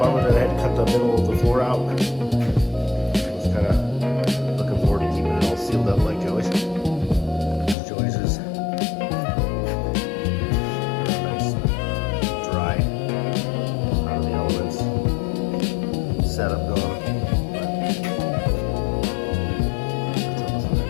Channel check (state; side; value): drops out; right; at 7.8 s